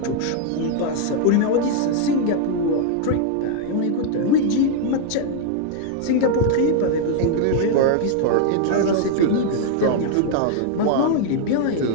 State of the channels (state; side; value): different; both; correlation 0.00